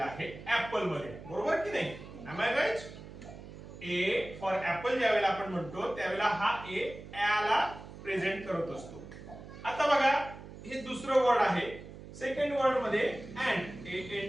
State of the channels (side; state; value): right; noise; hum, 14 dB below the sound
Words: आहे ऍपल मध्ये, बरोबर की नाही? Am I right? A for apple ज्यावेळेला आपण म्हणतो त्यावेळेला हा ए ला प्रेझेंट करत असतो. आता बघा, हे दुसरं वर्ड आहे. सेकंड वर्ड मध्ये अँड,